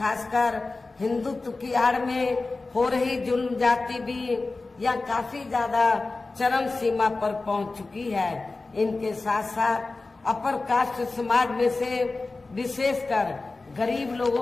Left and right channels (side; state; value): right; quieter; 3.5 dB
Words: हिंदुत्व की आड़ में हो रही जुल्म जाति भी यह काफी ज्यादा चरम सीमा पर पहुंच चुकी है। इनके साथ साथ अपर कास्ट समाज में से विशेषकर गरीब